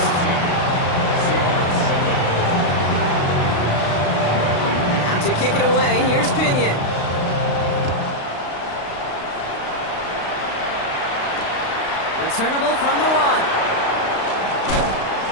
Out to kick it away, here's Pinion. Returnable from the 1.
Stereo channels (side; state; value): right; late; 35 ms